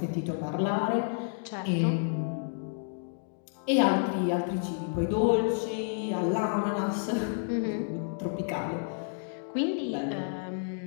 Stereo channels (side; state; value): right; silent; digital silence